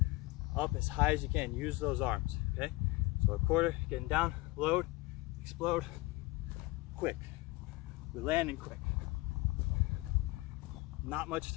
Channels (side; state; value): right; quieter; 21.1 dB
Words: Up as high as you can, use those arms, okay? So a quarter, getting down, load, explode, quick. We land and quick. Not much